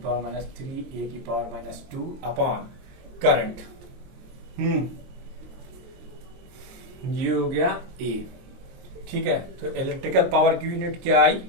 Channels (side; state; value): left; late; 22 ms